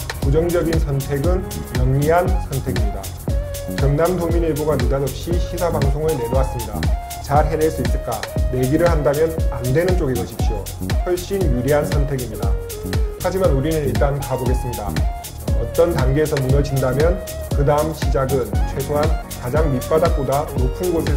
부정적인 선택은 영리한 선택입니다. 경남도민일보가 느닷없이 시사방송을 내놓았습니다. 잘 해낼 수 있을까? 내기를 한다면 안 되는 쪽에 거십시오. 훨씬 유리한 선택입니다. 하지만 우리는 일단 가보겠습니다. 어떤 단계에서 무너진다면 그 다음 시작은 최소한 가장 밑바닥보다 높은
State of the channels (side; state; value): both; identical; correlation 1.00